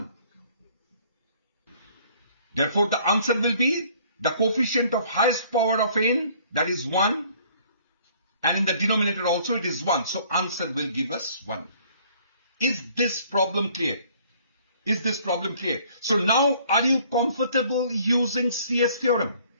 Therefore the answer will be the coefficient of highest power of n, that is 1. And in the denominator also it is 1. So answer will give us 1. Is this problem clear? Is this problem clear? So now are you comfortable using CS theorem?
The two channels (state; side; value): inverted; both; correlation -0.58